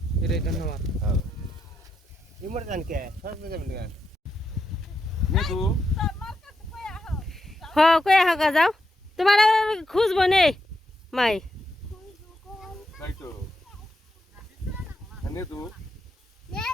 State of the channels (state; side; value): normal; both; correlation 0.83